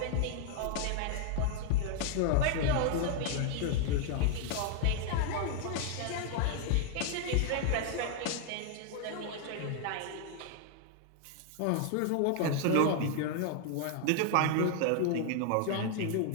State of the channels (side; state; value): both; different; correlation 0.00